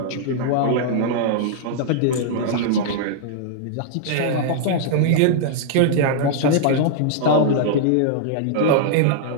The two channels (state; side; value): different; both; correlation -0.01